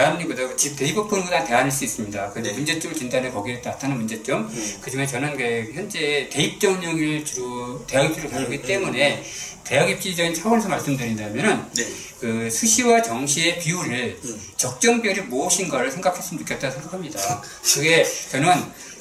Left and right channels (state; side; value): identical; both; correlation 1.00